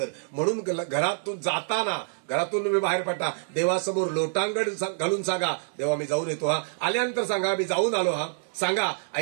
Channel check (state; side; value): silent; left; digital silence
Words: म्हणून घरातून जाताना, घरातून तुम्ही बाहेर पडता, देवासमोर लोटांगण घालून सांगा, देवा मी जाऊन येतो हा. आल्यानंतर सांगा मी जाऊन आलो हा. सांगा,